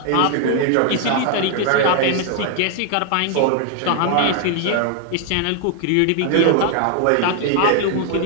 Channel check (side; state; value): both; different; correlation 0.00